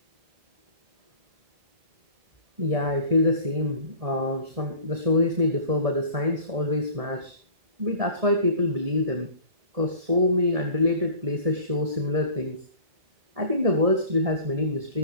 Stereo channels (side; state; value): left; late; 1.7 ms